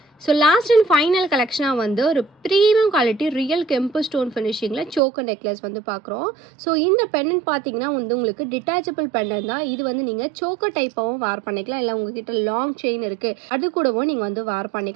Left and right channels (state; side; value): drops out; left; at 5.0 s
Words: ஸோ லாஸ்ட் அண்ட் ஃபைனல் கலெக்ஷனாக வந்து ஒரு ப்ரீமியம் குவாலிட்டி ரியல் கெம்பு ஸ்டோன் ஃபினிஷிங்கில் சோக்கர் நெக்லஸ் வந்து பார்க்குறோம். ஸோ இந்த பெண்டன்ட் பார்த்தீங்கன்னா வந்து உங்களுக்கு டிட்டாச்சபிள் பெண்டன்ட் தான். இது வந்து நீங்கள் சோக்கர் டைப்பாகவும் வேர் பண்ணிக்கலாம். இல்லை உங்ககிட்ட லாங் செயின் இருக்குது அது கூடவும் நீங்கள் வந்து வேர்